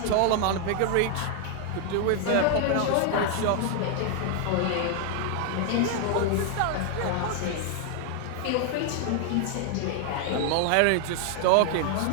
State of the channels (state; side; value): different; both; correlation 0.00